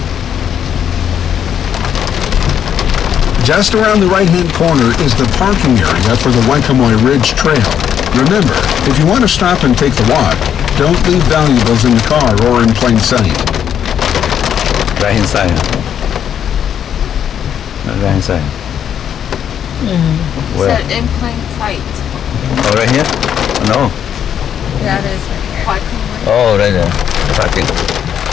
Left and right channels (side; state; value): right; quieter; 9.1 dB